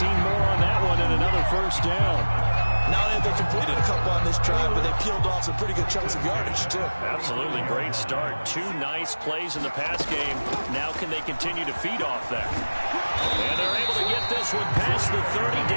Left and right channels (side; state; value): both; inverted; correlation -1.00